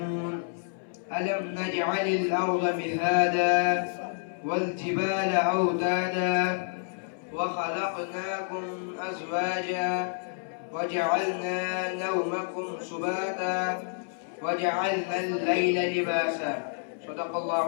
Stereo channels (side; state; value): right; silent; 59 dB below the other